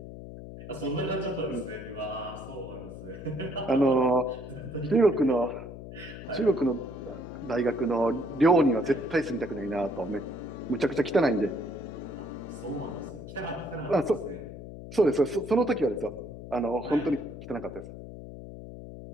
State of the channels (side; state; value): left; noise; hum, 12 dB below the sound